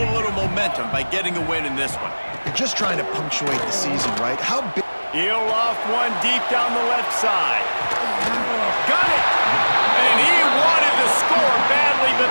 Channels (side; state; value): both; inverted; correlation -1.00